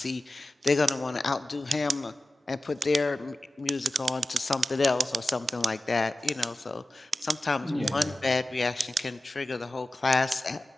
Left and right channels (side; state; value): both; normal; correlation 0.94